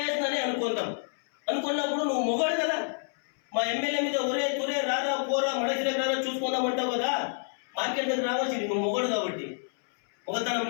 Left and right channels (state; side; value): silent; right; 59 dB below the other